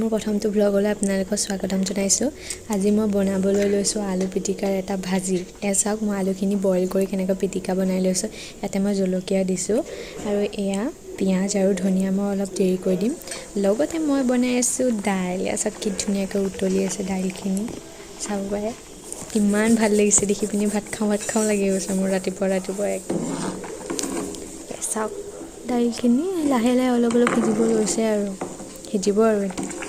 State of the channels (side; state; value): both; identical; correlation 1.00